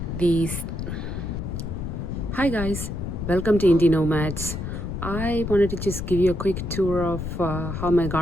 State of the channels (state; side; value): noise; left; rumble, 5 dB below the sound